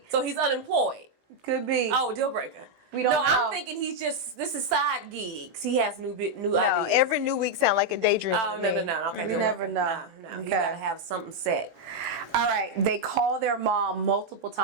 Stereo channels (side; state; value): left; late; 18 ms